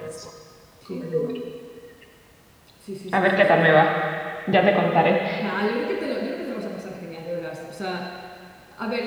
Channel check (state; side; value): identical; both; correlation 1.00